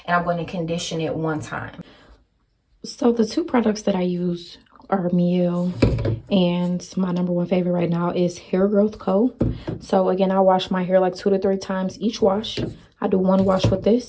and I'm going to condition it 1 time. So the 2 products that I use are Miel, and my #1 favorite right now is Hair Growth Co. So again, I wash my hair like 2 to 3 times each wash. I do 1 wash with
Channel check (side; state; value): both; identical; correlation 1.00